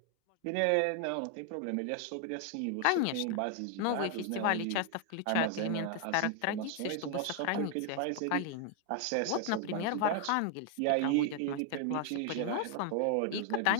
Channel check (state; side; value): different; both; correlation 0.00